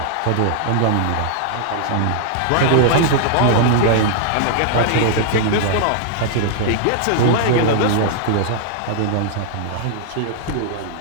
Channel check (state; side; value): different; both; correlation -0.01